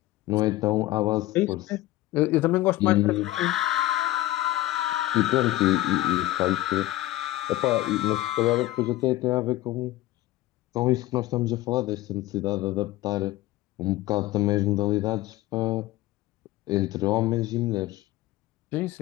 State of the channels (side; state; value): right; quieter; 16.5 dB